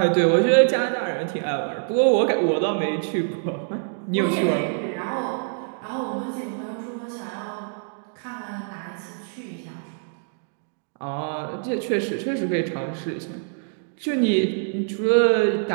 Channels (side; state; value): left; silent; digital silence